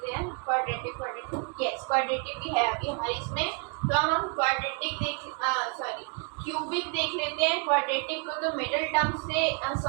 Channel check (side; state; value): left; quieter; 36.3 dB